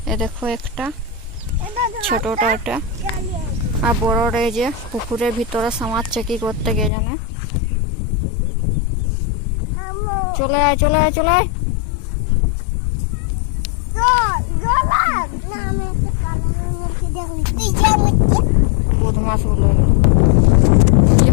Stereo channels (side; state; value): right; drops out; at 6.9 s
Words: দেখো একটা ছোটটা একটা, আর বড়রা এই যে পুকুরের ভিতরে সামাচ্ছে কি করতে কে জানে। চলে আয় চলে আয় চলে আয়। বদমাস গুলো ওই যে